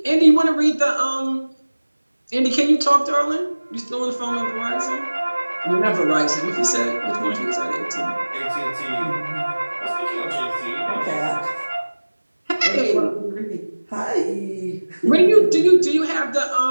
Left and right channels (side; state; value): both; inverted; correlation -1.00